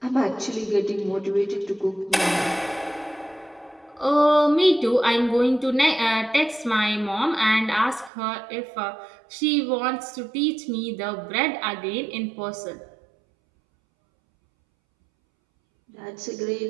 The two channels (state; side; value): drops out; left; at 8.1 s